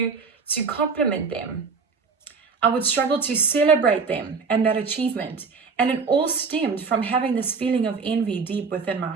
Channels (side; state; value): left; quieter; 5.0 dB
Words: compliment them. I would struggle to celebrate them and that achievement. And it all stemmed from having this feeling of envy deep within my